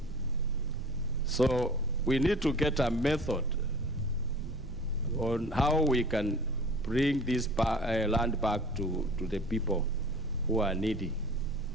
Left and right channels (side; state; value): right; noise; rumble, 13 dB below the sound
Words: So we need to get a method on how we can bring this land back to the people who are needy.